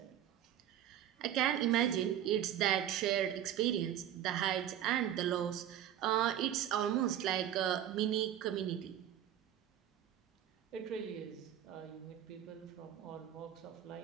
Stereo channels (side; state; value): left; quieter; 10.9 dB